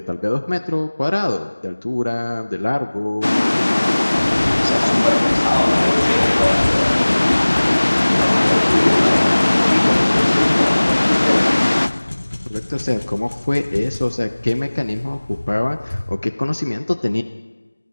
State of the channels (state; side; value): inverted; both; correlation -1.00